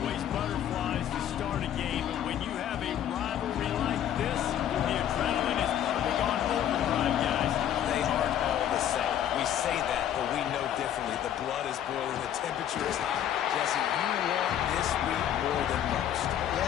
butterflies to start a game, and when you have a rivalry like this, the adrenaline is probably on overdrive, guys. They aren't all the same. We say that, but we know differently. The blood is boiling, the temperature is hot. Jesse, you want this week more than most.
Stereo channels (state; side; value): quieter; right; 10.5 dB